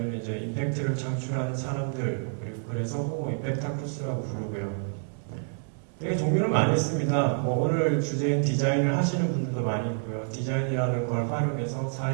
이제 임팩트를 창출하는 사람들, 그리고 그래서 호모 임팩타쿠스라고 부르고요. 되게 종류는 많이 있습니다. 뭐 오늘 주제인 디자인을 하시는 분들도 많이 있고요. 디자인이라는 걸 활용해서 사회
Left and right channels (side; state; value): left; silent; 59 dB below the other